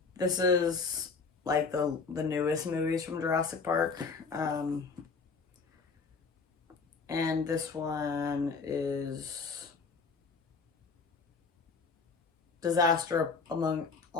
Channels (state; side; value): quieter; right; 4.7 dB